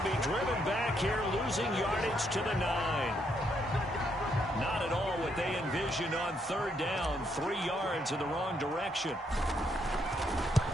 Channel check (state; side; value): normal; both; correlation 0.75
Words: be driven back here, losing yardage to the 9. Not at all what they envisioned on 3rd down. 3 yards in the wrong direction.